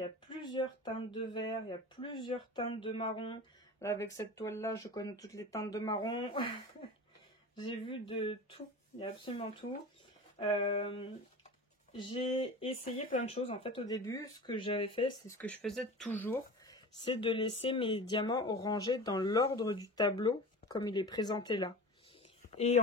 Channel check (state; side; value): normal; both; correlation 0.34